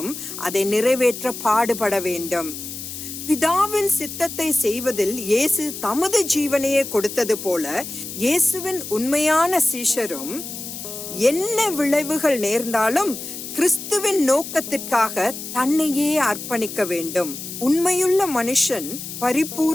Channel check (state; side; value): noise; left; hiss, 9 dB below the sound